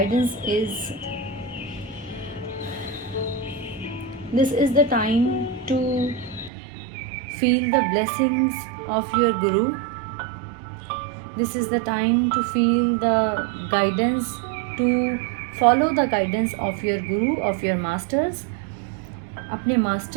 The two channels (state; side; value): drops out; left; at 6.5 s